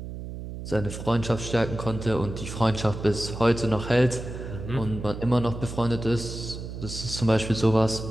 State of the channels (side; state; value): right; noise; hum, 9 dB below the sound